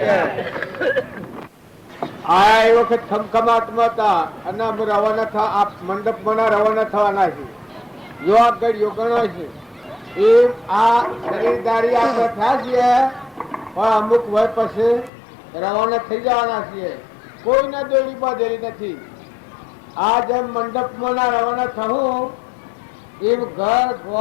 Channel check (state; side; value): drops out; right; at 15.1 s